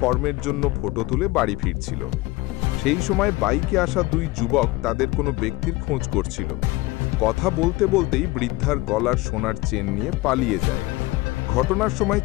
জন্য ফটো তুলে বাড়ি ফিরছিল। সেই সময় বাইকে আসা দুই যুবক তাদের কোনো ব্যক্তির খোঁজ করছিল। কথা বলতে বলতেই বৃদ্ধার গলার সোনার চেন নিয়ে পালিয়ে যায়। ঘটনার সময়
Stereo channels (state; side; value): quieter; right; 20.8 dB